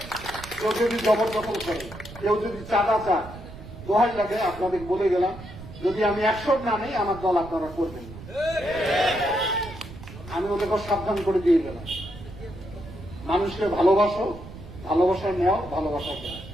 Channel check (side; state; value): right; noise; rumble, 14 dB below the sound